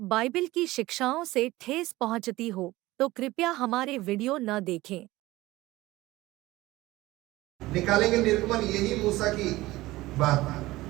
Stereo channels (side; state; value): left; quieter; 18.3 dB